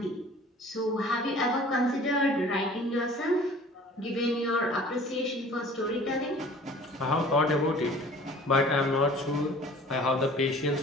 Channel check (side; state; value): both; normal; correlation 0.48